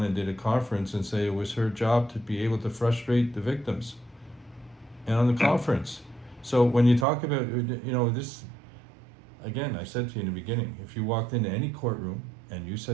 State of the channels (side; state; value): left; drops out; at 7.1 s